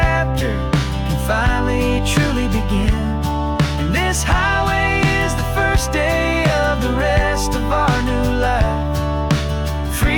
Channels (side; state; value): both; identical; correlation 1.00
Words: can finally truly begin. And this highway is the first day of the rest of our new life,